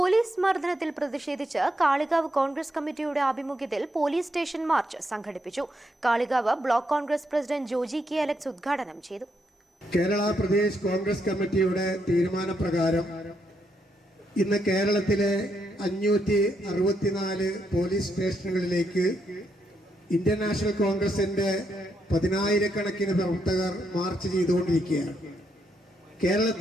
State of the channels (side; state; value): both; normal; correlation 0.78